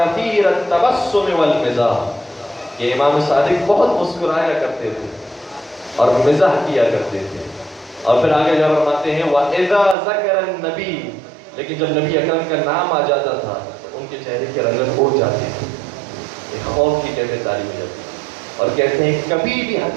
التبسم والمزاح، یہ امام صادق بہت مسکرایا کرتے تھے اور مزاح کیا کرتے تھے. اور پھر آگے جب فرماتے ہیں وَإِذَا ذَكَرَ النَّبِيُّ، لیکن جب نبی اکرم کا نام آ جاتا تھا تو ان کے چہرے کی رنگت اڑ جاتی تھی، ایک خوف کی کیفیت طاری ہو جاتی. اور کہتے ہیں کبھی بھی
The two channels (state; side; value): drops out; left; at 10.0 s